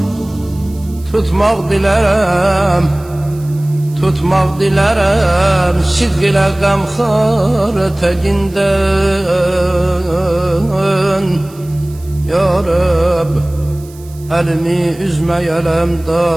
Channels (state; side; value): noise; right; hiss, 24 dB below the sound